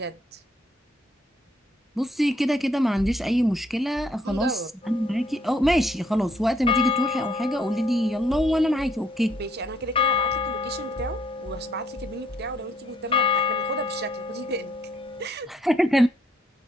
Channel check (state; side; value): normal; both; correlation 0.68